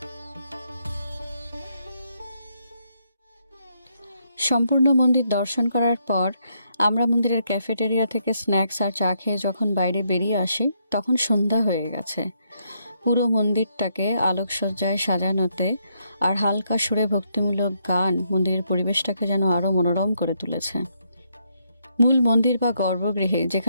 সম্পূর্ণ মন্দির দর্শন করার পর আমরা মন্দিরের ক্যাফেটেরিয়া থেকে স্ন্যাক্স আর চা খেয়ে যখন বাইরে বেরিয়ে আসি তখন সন্ধ্যা হয়ে গেছে। পুরো মন্দিরটাকে আলোকসজ্জায় সাজানোতে আর হালকা সুরে ভক্তিমূলক গান মন্দিরের পরিবেশটাকে যেন আরো মনোরম করে তুলেছে। মূল মন্দির বা গর্ভগৃহে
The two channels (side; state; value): both; inverted; correlation -0.76